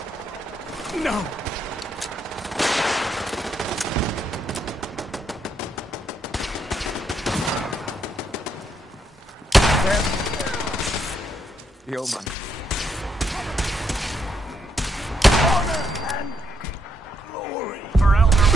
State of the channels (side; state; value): both; normal; correlation 0.77